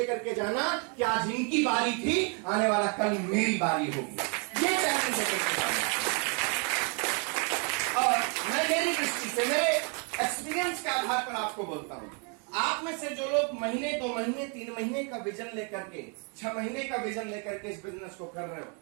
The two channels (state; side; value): quieter; left; 37.1 dB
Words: के जाना कि आज इनकी बारी थी, आने वाला कल मेरी बारी होगी। ये चैलेंज लेकर के जाना। और मैं मेरी दृष्टि से, मेरे एक्सपीरियंस के आधार पर आपको बोलता हूं, आप में से जो लोग महीने, 2 महीने, 3 महीने का विजन लेकर के, 6 महीने का विजन लेकर के इस बिजनेस को कर रहे हो,